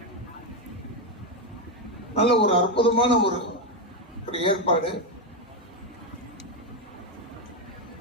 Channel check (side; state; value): both; normal; correlation 0.07